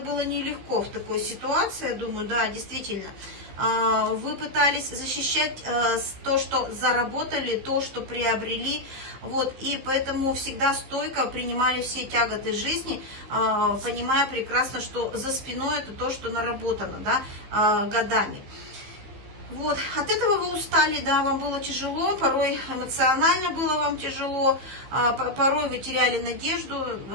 нелегко в такой ситуации, я думаю, да, действительно. Вы пытались защищать то, что заработали, то, что приобрели, вот, и поэтому всегда стойко принимали все тяготы жизни, понимая прекрасно, что за спиной это то, что наработано, да, годами. Вот, от этого вы устали, да, вам было тяжело, порой эмоционально было вам тяжело, порой вы теряли надежду,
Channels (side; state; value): left; late; 15 ms